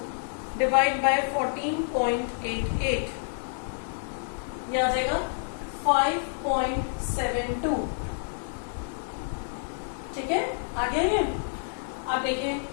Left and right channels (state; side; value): silent; right; 59 dB below the other